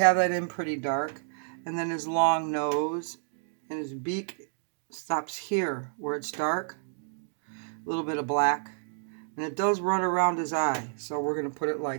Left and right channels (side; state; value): left; silent; digital silence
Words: that in pretty dark. And then his long nose and his beak stops here where it's dark. A little bit of black. And it does run around his eye. So we're going to put it